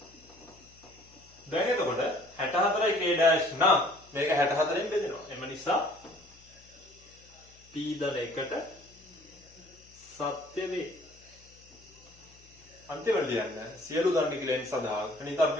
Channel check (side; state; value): left; noise; hum, 26 dB below the sound